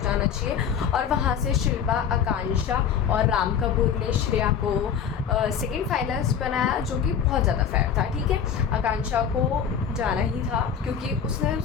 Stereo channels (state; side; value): quieter; right; 7.8 dB